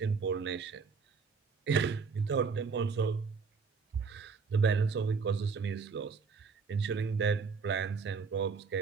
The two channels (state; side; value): quieter; left; 5.2 dB